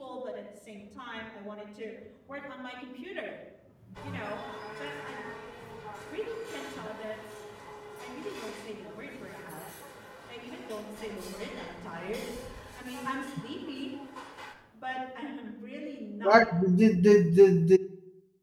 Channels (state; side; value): identical; both; correlation 1.00